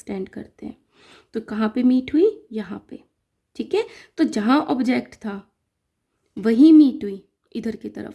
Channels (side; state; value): both; identical; correlation 1.00